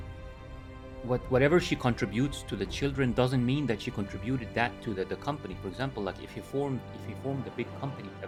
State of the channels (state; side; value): identical; both; correlation 1.00